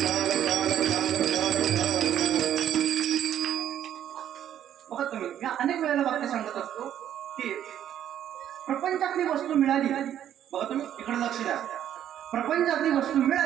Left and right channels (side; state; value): left; quieter; 10.6 dB